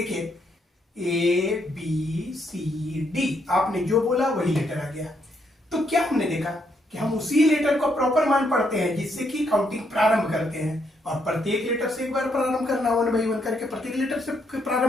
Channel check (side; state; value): both; normal; correlation 0.75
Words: ए बी सी डी, आपने जो बोला वही लेटर आ गया। तो क्या हमने देखा कि हम उसी लेटर को प्रॉपर मान पढ़ते हैं जिससे कि काउंटिंग प्रारंभ करते हैं, और प्रत्येक लेटर से एक बार प्रारंभ करना, 1 by 1 करके प्रत्येक लेटर से